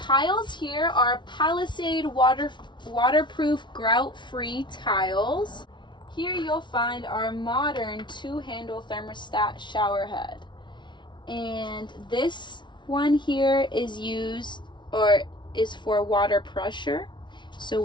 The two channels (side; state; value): right; late; 0.23 ms